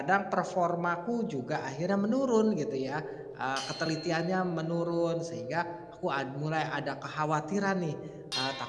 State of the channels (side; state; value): both; identical; correlation 1.00